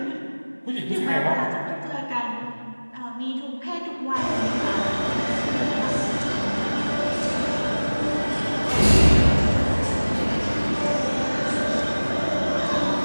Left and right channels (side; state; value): both; inverted; correlation -1.00